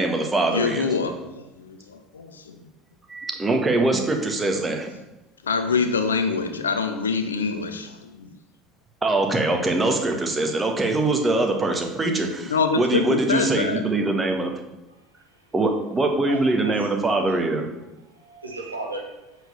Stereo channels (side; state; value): both; normal; correlation 0.36